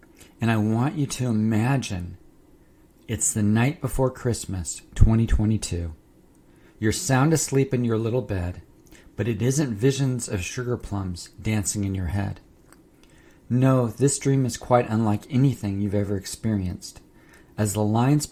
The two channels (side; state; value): both; identical; correlation 1.00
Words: and I want you to imagine it's the night before Christmas, 2022. You're sound asleep in your little bed, but it isn't visions of sugar plums dancing in your head. No, this dream is quite unlike anything you've ever experienced, as the lines